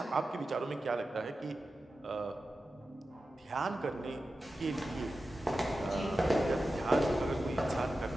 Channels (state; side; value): normal; both; correlation 0.93